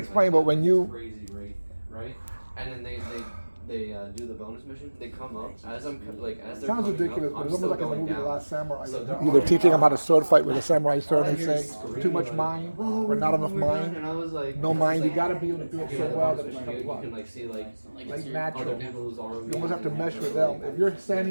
explain, like, but when you crazy rate, right? And then they do the bonus mission. They come up as I'm like as they're sounds coming ridiculous, up, but I'm it's almost still like in the going movie The down. Last Samurai. So they're Either all teaching them how down. to sword fight with a samurai sword, All I they hear is say screaming, too much like, mind "Oh, or not enough we're done," mind. And I was like, No mind. You like, got to be able to do it yeah, so the well bonus that it's mission, like you what? can like see like Like other natural. people's ROVs. You almost have to mesh with them. If you're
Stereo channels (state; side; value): inverted; both; correlation -1.00